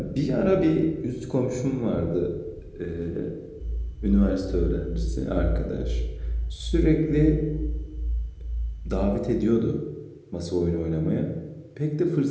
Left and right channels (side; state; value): both; identical; correlation 1.00